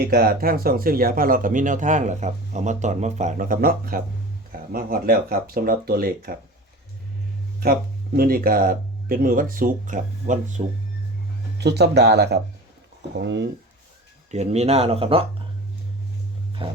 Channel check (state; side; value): normal; both; correlation 0.36